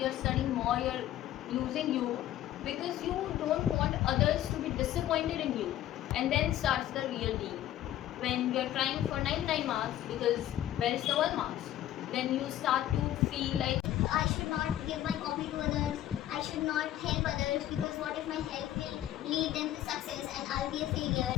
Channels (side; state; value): right; quieter; 12.8 dB